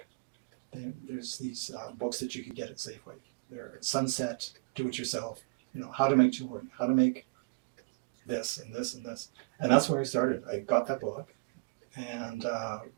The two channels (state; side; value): quieter; left; 31.1 dB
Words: There's these books that you could get at Safeway. They're Sunset, Do-It-Yourself. How to make jewelry, how to make this and this and this, and that's where I started. I got that book and